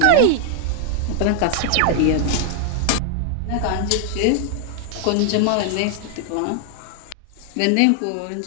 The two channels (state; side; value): different; both; correlation 0.00